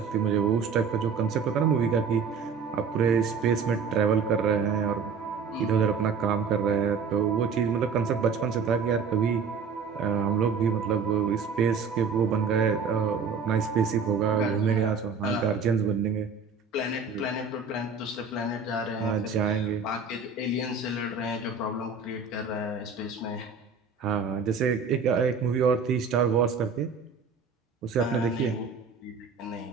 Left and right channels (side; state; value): left; quieter; 5.4 dB